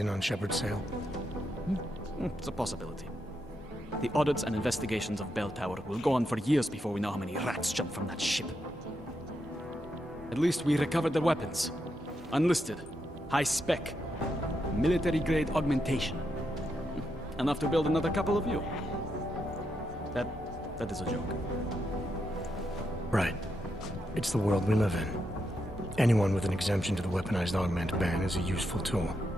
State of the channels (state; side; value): normal; both; correlation 0.83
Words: on Shepard's sale. It's a possibility. The audits and investigations of Bell Tower will go on for years before we know how many rats jumped from that ship. At least we recovered their weapons. Unlisted. High spec. Military-grade augmentation. Enough to build another couple of you. That is a joke. Right. It's the world we live in. Anyone with an exemption to the weaponized augment ban is a useful tool.